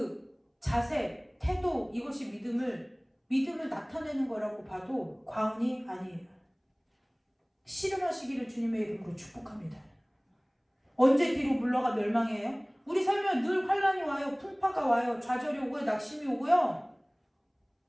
자세, 태도, 이것이 믿음을 나타내는 거라고 봐도 과언이 아니에요. 씨름하시기를 주님의 이름으로 축복합니다. 언제 뒤로 물러가 멸망해요? 우리 삶에 늘 환란이 와요. 풍파가 와요. 좌절이 오고요. 낙심이 오고요.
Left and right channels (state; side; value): identical; both; correlation 1.00